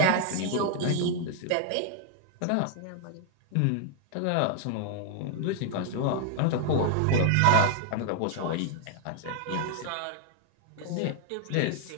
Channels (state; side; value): different; both; correlation 0.00